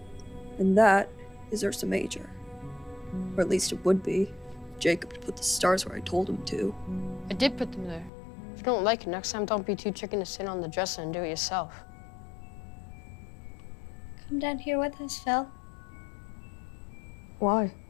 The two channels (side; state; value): right; drops out; at 8.1 s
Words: And that is Ursa Major. Or at least it would be. Jacob put the stars where I told him to. I did put them there. If you don't like it, next time don't be too chicken to sit on the dresser and do it yourself. Come down here with us, Phil. Why?